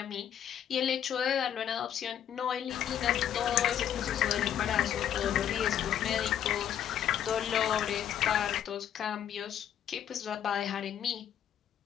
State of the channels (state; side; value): quieter; right; 9.9 dB